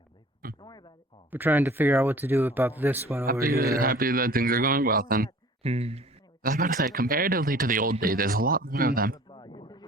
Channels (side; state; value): both; normal; correlation 0.48